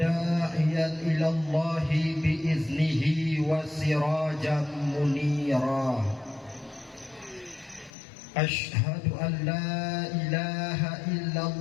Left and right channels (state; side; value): drops out; right; at 7.9 s